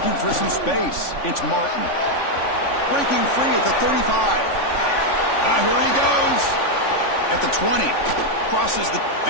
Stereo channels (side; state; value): right; late; 3.5 ms